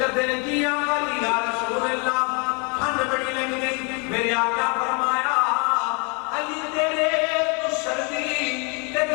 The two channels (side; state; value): right; quieter; 33.8 dB